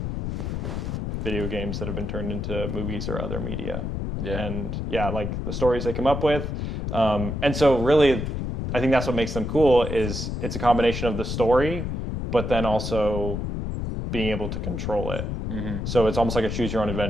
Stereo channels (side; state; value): left; noise; rumble, 3 dB below the sound